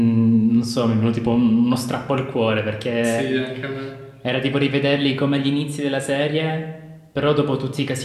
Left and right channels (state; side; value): identical; both; correlation 1.00